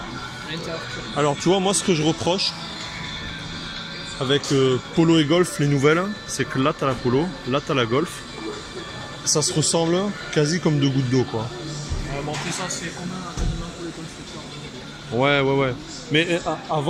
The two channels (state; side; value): identical; both; correlation 1.00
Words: Alors, tu vois, moi, ce que je reproche avec Polo et Golf, les nouvelles, c'est que là, t'as la Polo, là, t'as la Golf. Ça se ressemble quasi comme deux gouttes d'eau, quoi. Bon, après ça, c'est commun quasiment pour les constructeurs. Ouais. Mais